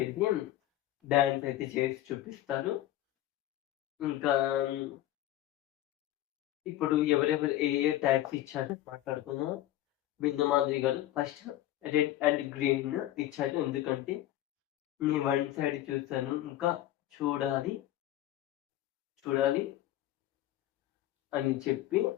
వెళ్ళి డాన్స్ అయితే చేసి చూపిస్తారు. ఇంకా ఇప్పుడు ఎవరెవరు ఏ ట్యాగ్స్ ఇచ్చారో మాట్లాడుకుందాం. బిందు మాధురి గారు ఫస్ట్ రెడ్ అండ్ గ్రీన్ ఇచ్చారు. ఎందుకంటే నేను వన్ సైడ్ చూస్తాను, ఇంకా చూడాలి అని చెప్పి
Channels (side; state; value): right; quieter; 14.1 dB